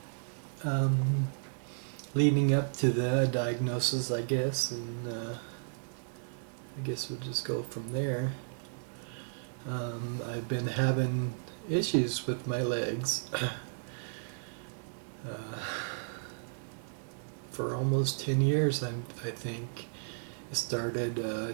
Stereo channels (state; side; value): silent; left; digital silence